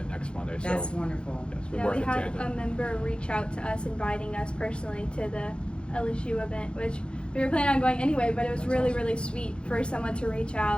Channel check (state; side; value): late; right; 0.055 ms